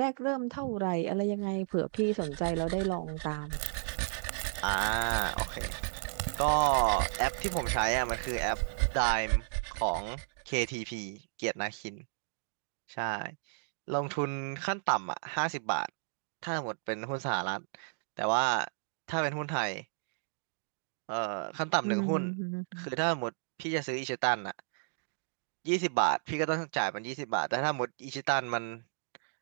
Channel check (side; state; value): left; silent; digital silence